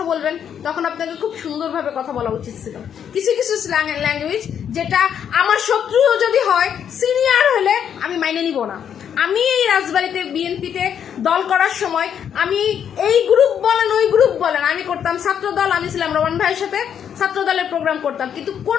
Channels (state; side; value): quieter; right; 8.6 dB